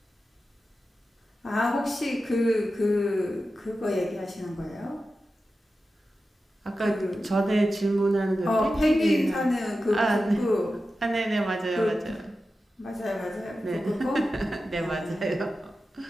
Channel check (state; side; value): normal; both; correlation 0.92